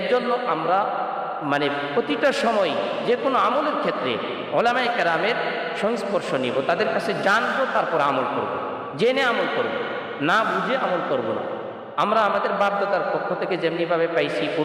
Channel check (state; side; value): identical; both; correlation 1.00